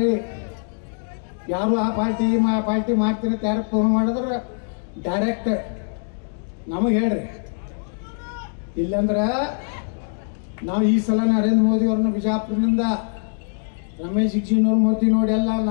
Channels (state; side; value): silent; right; digital silence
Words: ಯಾರು ಆ ಪಾರ್ಟಿ ಮಾಡ್ತೀರ ಯಾರು ಫೋನ್ ಮಾಡಿದ್ರೆ ಡೈರೆಕ್ಟ್ ನಮಗೆ ಹೇಳ್ರಿ. ಇಲ್ಲಂದ್ರ ನಾವು ಈ ಸಲ ನರೇಂದ್ರ ಮೋದಿ ಅವ್ರನ್ನ ಬಿಜಾಪುರದಿಂದ ರಮೇಶ್ ಜಿಗಜಿಣಗಿ ಮೋದಿ ನೋಡಿ ಎಲ್ಲ,